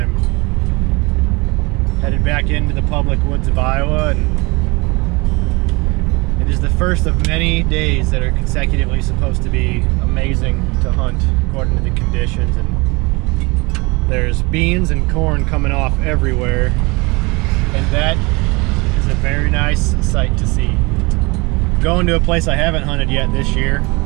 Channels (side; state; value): left; quieter; 26.0 dB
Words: Headed back into the public woods of Iowa, and it is the first of many days that are consecutively supposed to be amazing to hunt according to the conditions. And there's beans and corn coming off everywhere, and that is a very nice sight to see. Going to a place I haven't hunted yet this year,